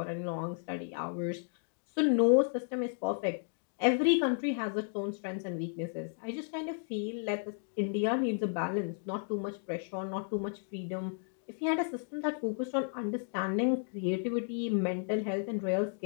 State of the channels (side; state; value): right; silent; digital silence